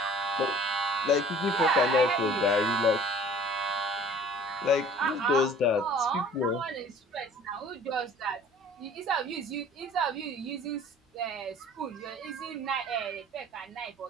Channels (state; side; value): normal; both; correlation 0.49